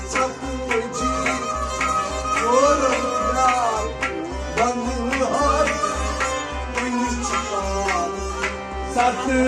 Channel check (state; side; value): identical; both; correlation 1.00